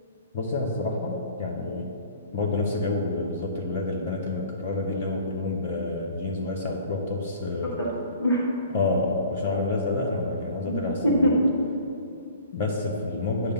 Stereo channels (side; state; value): both; inverted; correlation -0.47